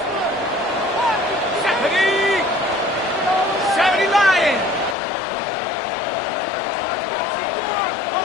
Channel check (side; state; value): right; drops out; at 5.0 s